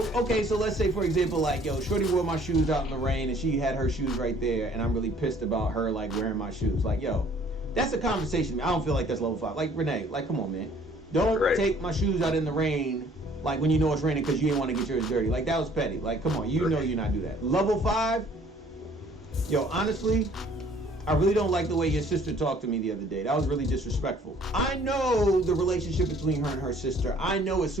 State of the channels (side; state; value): both; normal; correlation 0.57